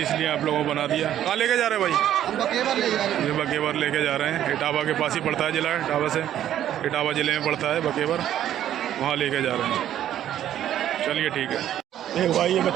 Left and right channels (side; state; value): left; quieter; 11.4 dB